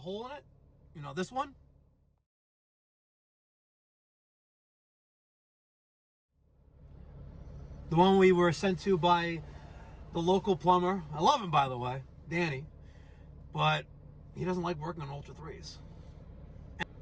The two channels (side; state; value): both; identical; correlation 1.00